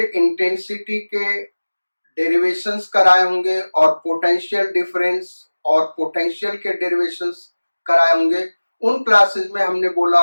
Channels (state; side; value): inverted; both; correlation -1.00